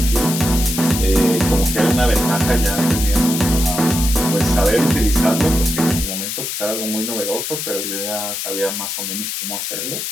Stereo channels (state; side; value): noise; left; hiss, 4 dB below the sound